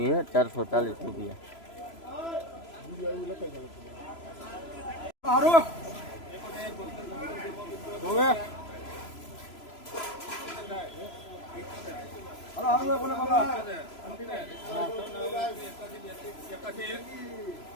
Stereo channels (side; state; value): right; late; 3.0 ms